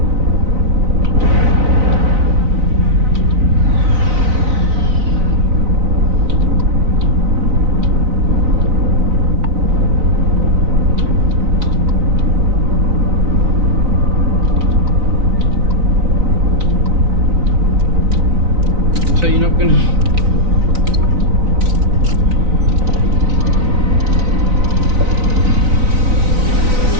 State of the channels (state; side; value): late; left; 4.0 ms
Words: So you're not gonna...